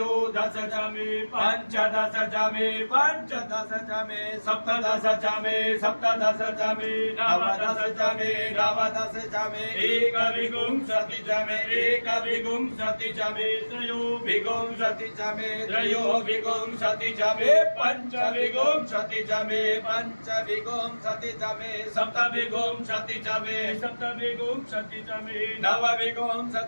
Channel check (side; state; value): both; inverted; correlation -1.00